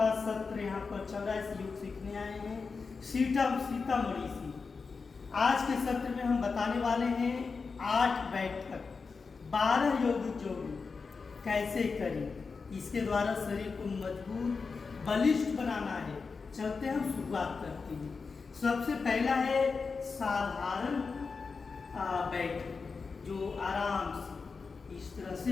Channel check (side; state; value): right; quieter; 4.8 dB